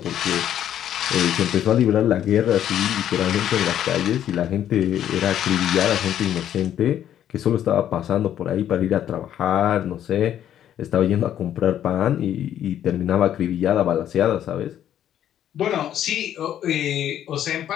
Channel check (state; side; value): quieter; right; 10.7 dB